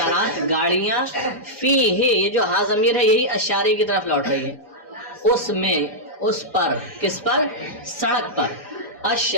گاڑیاں، فیہ یہ جو ہا ضمیر ہے یہی الشارع کی طرف لوٹ رہی ہے، اس میں، اس پر، کس پر؟ سڑک پر.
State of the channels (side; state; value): both; normal; correlation -0.08